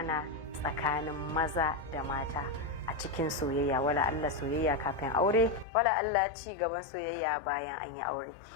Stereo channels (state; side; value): drops out; right; at 5.7 s